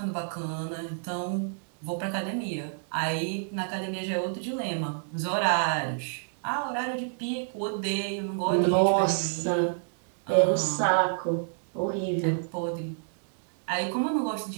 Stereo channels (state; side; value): silent; left; digital silence